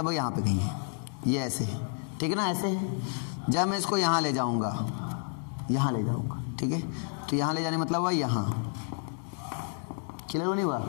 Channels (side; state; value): right; silent; 58 dB below the other